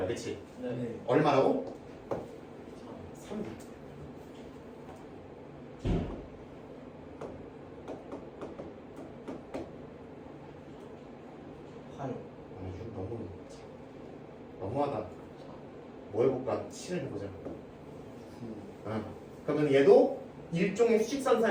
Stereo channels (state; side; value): identical; both; correlation 1.00